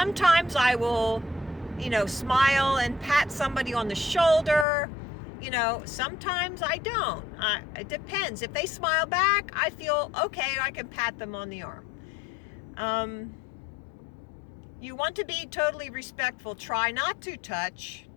I will, smile and pat somebody on the shoulder. Sometimes I don't. It depends. If they smile back, I feel okay, I can pat them on the arm. You want to be totally respectful. Try not to touch.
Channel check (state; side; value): drops out; right; at 4.7 s